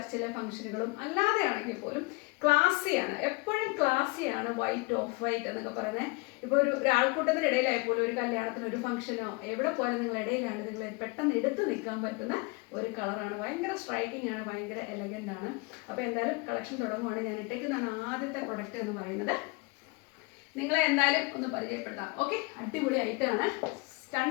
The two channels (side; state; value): right; quieter; 27.6 dB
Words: ഫംഗ്ഷനുകളും അല്ലാതെ ആണെങ്കിൽ പോലും ക്ലാസ്സിയാണ്, എപ്പോഴും ക്ലാസ്സിയാണ് വൈറ്റ് ഓഫ് വൈറ്റ് എന്നൊക്കെ പറയുന്നത്. ഇപ്പോൾ ഒരു ആൾക്കൂട്ടത്തിൻ്റെ ഇടയിലായപ്പോലും ഒരു കല്യാണത്തിന് ഒരു ഫംഗ്ഷനോ എവിടെ പോയാലും നിങ്ങളുടെ ഇടയിലാണ് നിങ്ങൾ പെട്ടെന്ന് എടുത്ത് നിൽക്കാൻ പറ്റുന്ന ഒരു കളറാണ്. ഭയങ്കര സ്ട്രൈക്കിംഗ് ആണ്, ഭയങ്കര എലഗൻ്റ് ആണ്. അപ്പോൾ എന്തായാലും കളക്ഷൻ തുടങ്ങുവാണ്. ഞാൻ ഇട്ടേക്കുന്നതാണ് ആദ്യത്തെ പ്രൊഡക്റ്റ് എന്ന് പറയുന്നത്. നിങ്ങളെ എന്തായാലും ഒന്ന് പരിചയപ്പെടുത്താം. ഓക്കെ, അടിപൊളി ഐറ്റമാണ്,